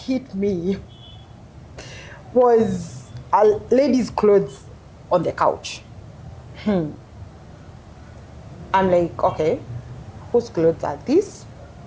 me was a lady's clothes on the couch. I'm like, okay, whose clothes are these?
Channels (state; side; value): identical; both; correlation 1.00